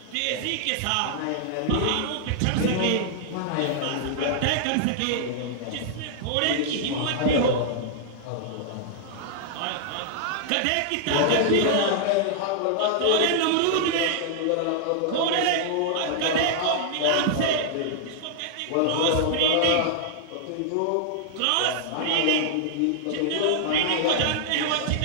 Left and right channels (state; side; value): different; both; correlation -0.01